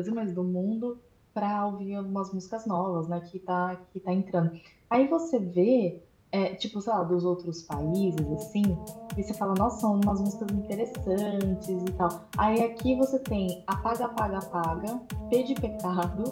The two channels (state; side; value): identical; both; correlation 1.00